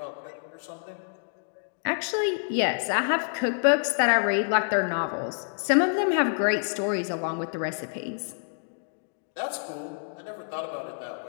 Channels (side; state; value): right; silent; digital silence